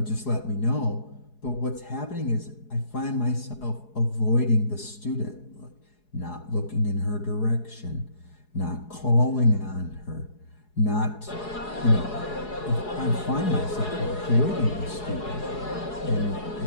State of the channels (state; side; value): late; right; 4.7 ms